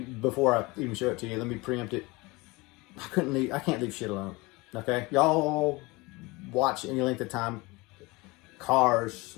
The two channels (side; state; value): right; quieter; 23.8 dB